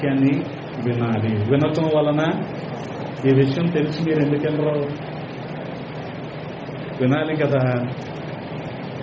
వినాలి. వినటం వలన ఈ విషయం తెలిసి మీరు ఎందుకెళ్ళరు? వినాలి కదా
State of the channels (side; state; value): both; identical; correlation 1.00